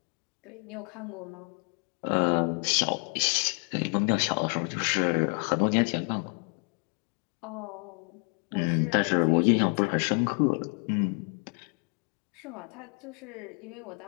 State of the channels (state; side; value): quieter; right; 38.0 dB